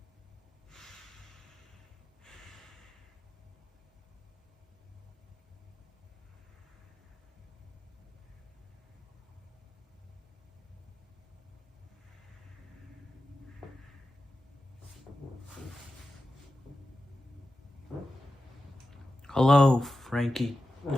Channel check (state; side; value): normal; both; correlation 0.92